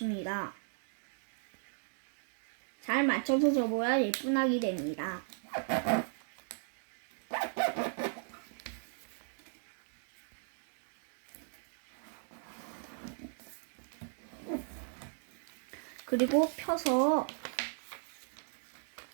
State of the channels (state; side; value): silent; left; digital silence